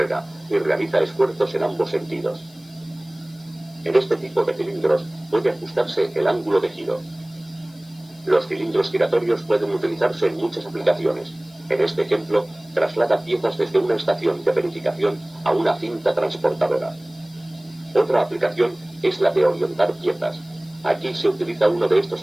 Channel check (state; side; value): noise; left; hiss, 27 dB below the sound